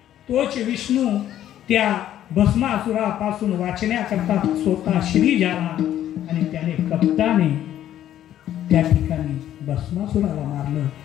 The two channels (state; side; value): quieter; right; 11.7 dB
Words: तोच विष्णू त्या भस्मासुरापासून वाचण्याकरता स्वतः श्री झाला आणि त्याने कपटाने त्या ठिकाणी भस्मासुराला मारलं.